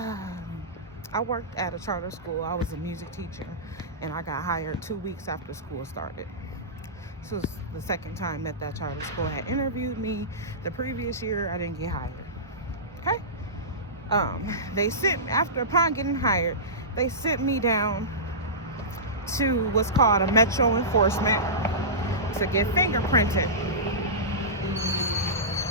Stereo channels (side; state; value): both; normal; correlation -0.19